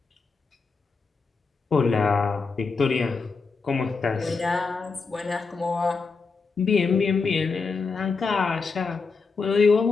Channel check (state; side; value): quieter; right; 4.6 dB